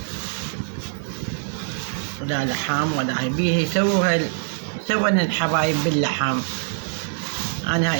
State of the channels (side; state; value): left; silent; 63 dB below the other